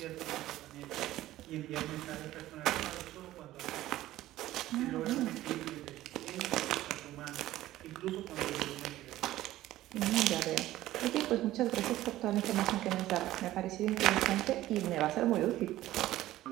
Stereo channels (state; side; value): quieter; left; 15.1 dB